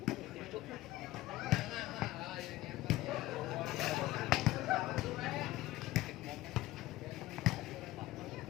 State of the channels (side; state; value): right; quieter; 16.8 dB